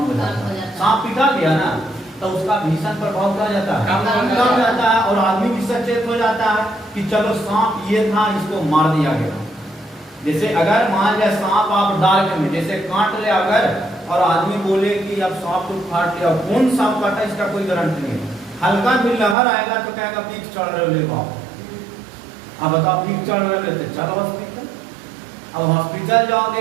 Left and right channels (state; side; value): drops out; left; at 19.4 s